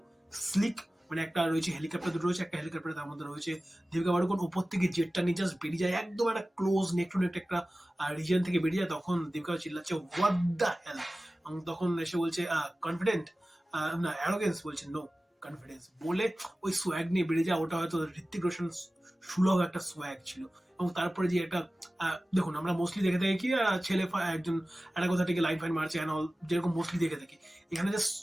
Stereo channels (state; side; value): normal; both; correlation 0.96